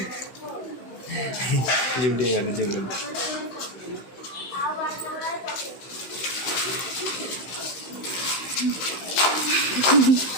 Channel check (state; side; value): late; right; 16 ms